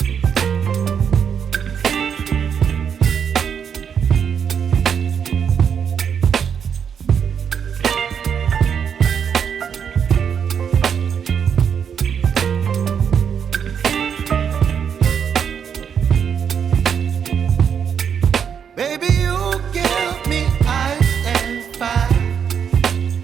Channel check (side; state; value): left; quieter; 7.5 dB